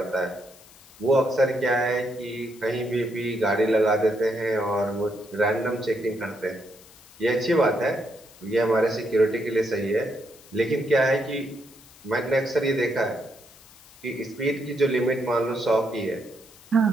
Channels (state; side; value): noise; left; hiss, 24 dB below the sound